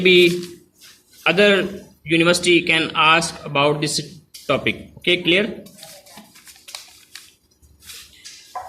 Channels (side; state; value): both; identical; correlation 1.00